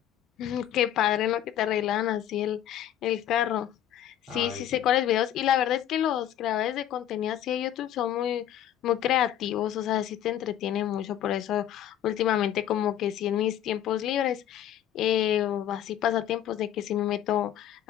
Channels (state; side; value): quieter; right; 11.1 dB